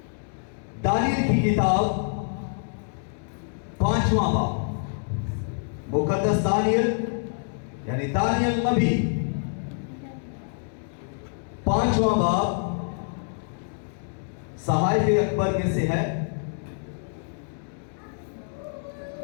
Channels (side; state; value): right; silent; digital silence